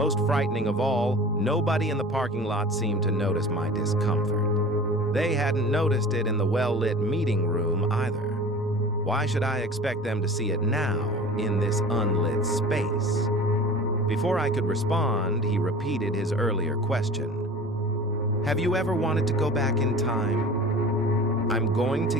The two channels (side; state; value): both; normal; correlation 0.40